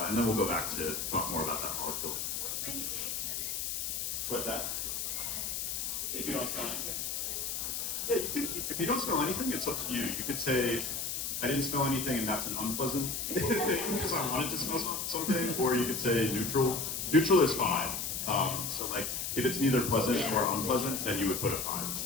then we'll go back to talk more about that molecule. What's that? If you don't smell anything? Yeah, you could, if you don't smell anything, it's up to you. You could say, I didn't smell anything and that's an unpleasant thing because I wanted to smell something, or you could say neutral. Neutral is 5. So like, if it's neither pleasant or unpleasant, then you would put a 5.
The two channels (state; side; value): noise; left; hiss, 2 dB below the sound